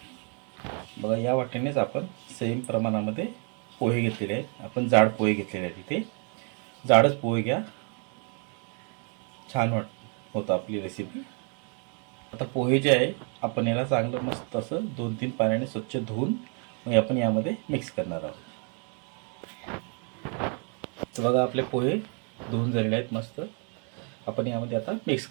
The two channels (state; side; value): quieter; left; 38.9 dB